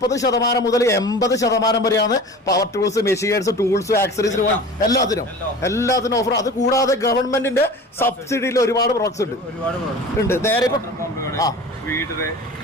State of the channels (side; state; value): both; normal; correlation 0.38